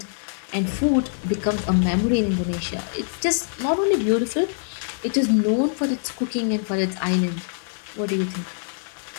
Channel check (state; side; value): silent; right; digital silence